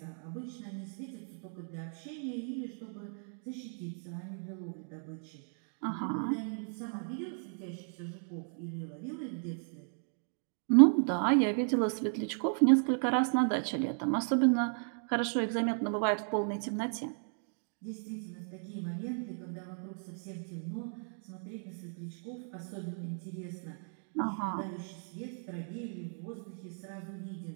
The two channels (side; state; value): left; silent; 54 dB below the other